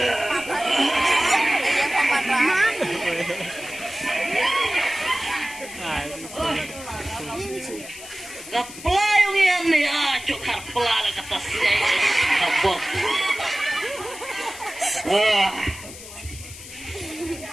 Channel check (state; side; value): noise; left; hiss, 14 dB below the sound